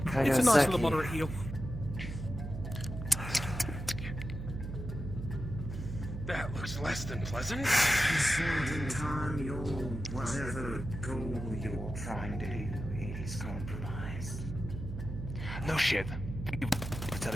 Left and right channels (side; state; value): right; noise; hum, 7 dB below the sound